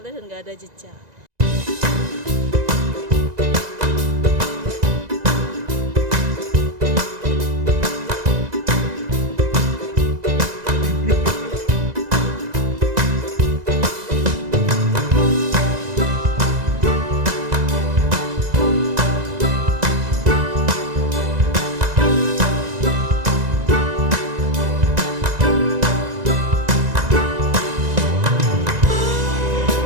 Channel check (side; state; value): left; late; 1.9 ms